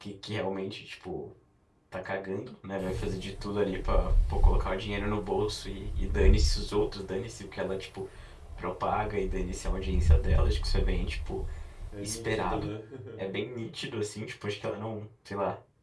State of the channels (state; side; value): identical; both; correlation 1.00